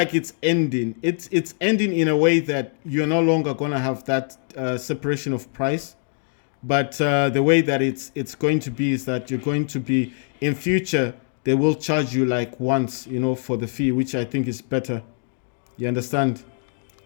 it's ending. It's ending in a way that you're no longer going to have that separation of price. But the way that it's going to be is that you're going to be, in future, they will charge you like once, for the fee, which I think is better. You understand?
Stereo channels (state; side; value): silent; right; 63 dB below the other